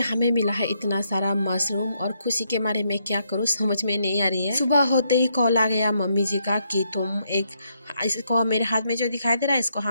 हमें मिला है इतना सारा मशरूम और खुशी के मारे मैं क्या करूँ समझ में नहीं आ रही है। सुबह होते ही कॉल आ गया मम्मी जी का कि तुम एक इसको मेरे हाथ में जो दिखाई दे रहा है इसको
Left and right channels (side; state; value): both; inverted; correlation -0.77